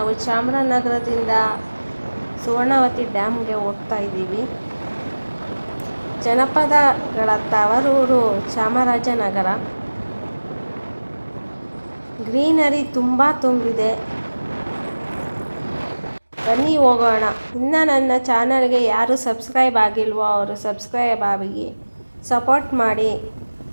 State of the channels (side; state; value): both; inverted; correlation -1.00